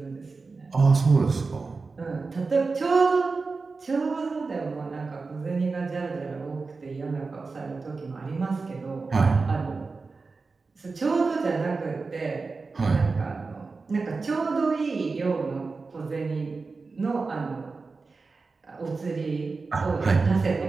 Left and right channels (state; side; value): quieter; left; 4.2 dB